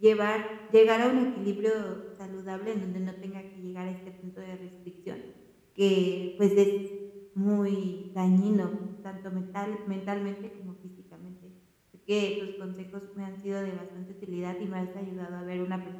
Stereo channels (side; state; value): both; identical; correlation 1.00